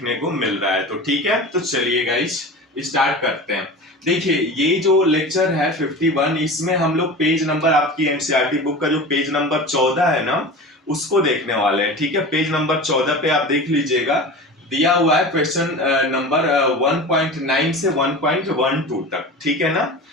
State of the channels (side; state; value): both; normal; correlation 0.33